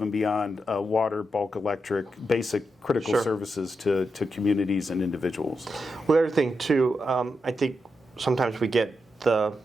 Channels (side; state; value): both; normal; correlation 0.86